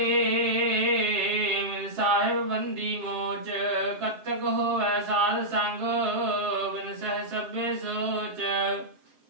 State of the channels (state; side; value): late; left; 7.5 ms